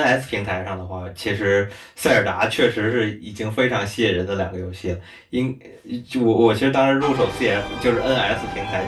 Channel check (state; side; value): identical; both; correlation 1.00